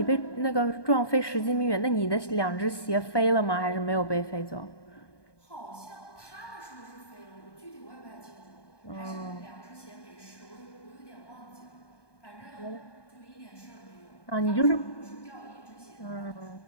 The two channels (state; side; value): late; right; 1.2 ms